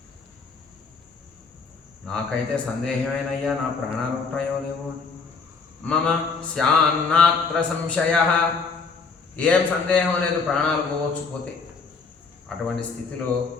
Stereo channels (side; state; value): right; quieter; 4.8 dB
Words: నాకైతే సందేహమేనయ్యా, నా ప్రాణాలు ఉంటాయో లేవో. మమ స్యాన్నాత్ర సంశయ, ఏం సందేహం లేదు, ప్రాణాలు పోవచ్చు పోతే. అటువంటి స్థితిలో